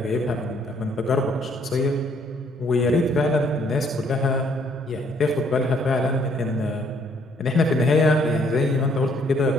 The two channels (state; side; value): normal; both; correlation 0.66